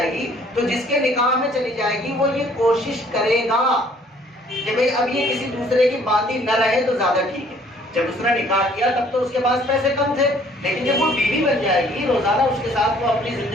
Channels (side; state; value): both; normal; correlation 0.59